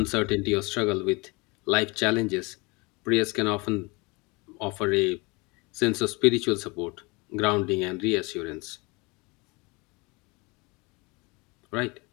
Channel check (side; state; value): right; quieter; 26.9 dB